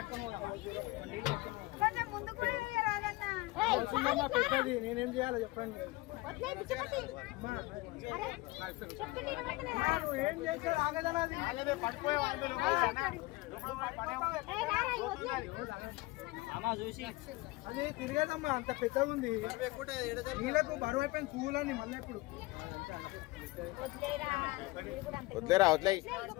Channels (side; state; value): right; quieter; 21.1 dB